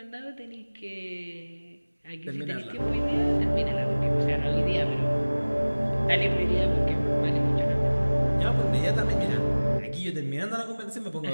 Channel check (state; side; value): inverted; both; correlation -1.00